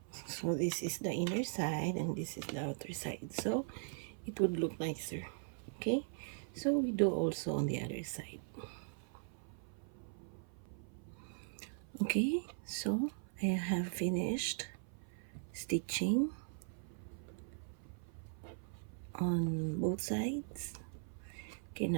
so this is the inner side and this is the outer side, so it would look nicer. Okay, so we do also on the other side. Okay, so I have finished stitching on both sides. Okay,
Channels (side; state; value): left; silent; 51 dB below the other